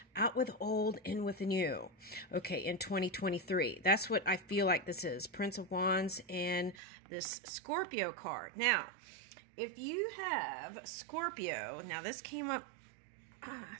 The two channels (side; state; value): left; drops out; at 6.8 s